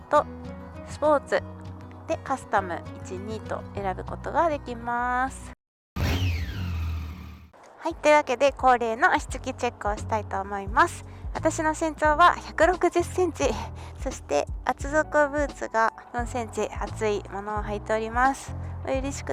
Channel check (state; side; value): identical; both; correlation 1.00